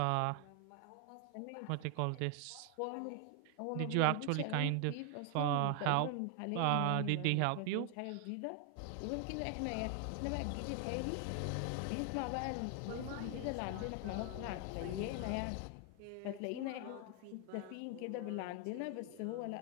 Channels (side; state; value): both; different; correlation 0.00